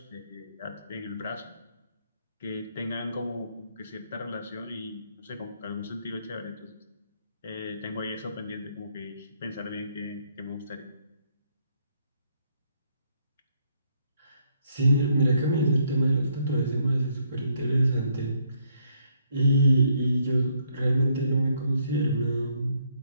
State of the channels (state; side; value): inverted; both; correlation -0.71